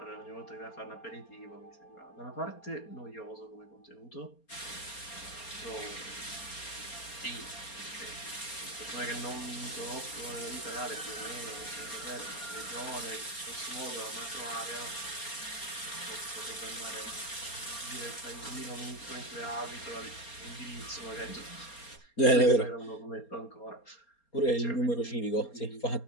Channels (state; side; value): late; right; 4.3 ms